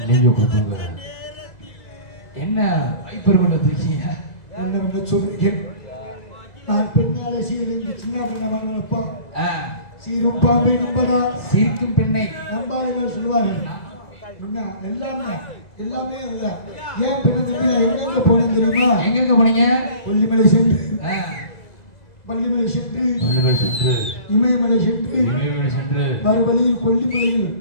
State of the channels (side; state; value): right; late; 2.0 ms